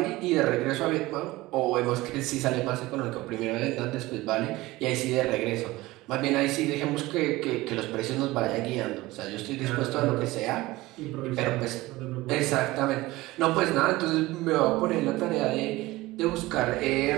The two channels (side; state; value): left; quieter; 19.2 dB